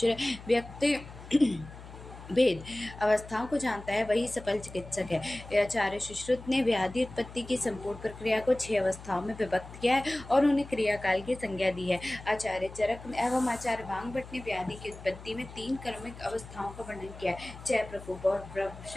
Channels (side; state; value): left; noise; hum, 15 dB below the sound